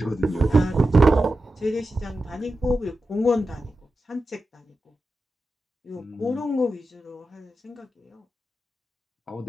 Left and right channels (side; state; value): both; normal; correlation 0.91